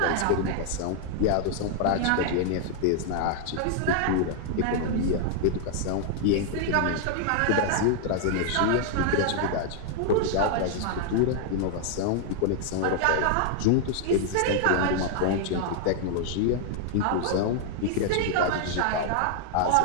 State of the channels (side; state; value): both; different; correlation 0.00